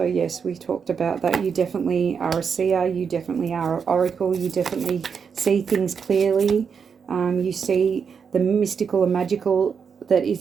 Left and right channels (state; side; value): quieter; left; 6.4 dB